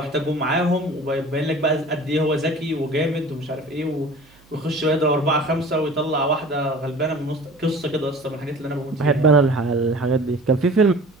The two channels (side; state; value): right; noise; hum, 29 dB below the sound